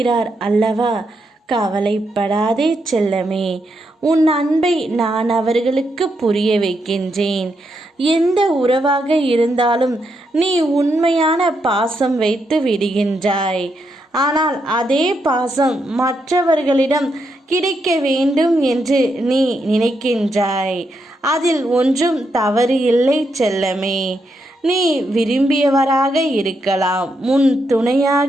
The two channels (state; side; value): normal; both; correlation 0.81